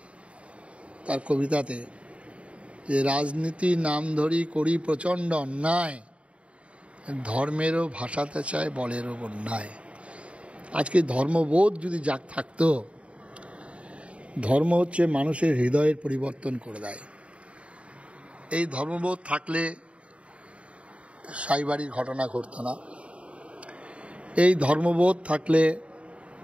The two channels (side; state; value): left; late; 0.062 ms